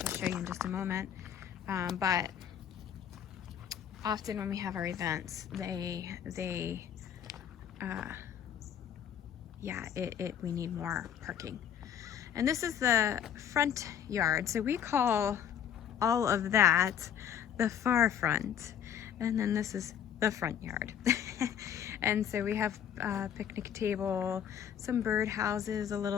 I'll show you in just a moment. But often when we have our events, we need more parking. And this is the front yard, so we call all of that the far front. And then this is the front yard. And so we have a picnic table, some bird houses, a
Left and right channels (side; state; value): right; quieter; 9.0 dB